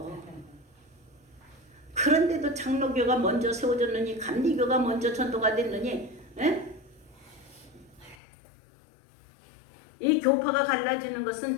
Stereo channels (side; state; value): right; drops out; at 8.2 s